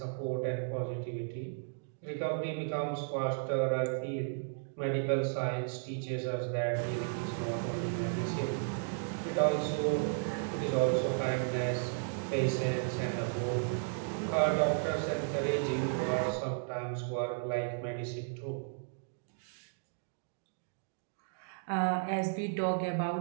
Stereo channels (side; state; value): left; silent; digital silence